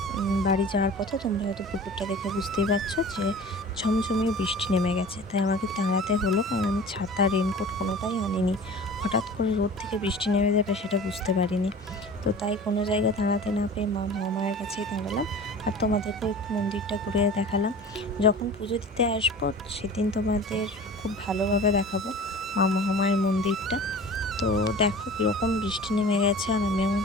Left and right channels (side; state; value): both; normal; correlation 0.40